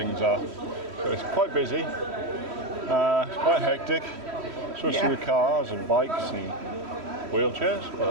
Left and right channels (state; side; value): late; left; 3.1 ms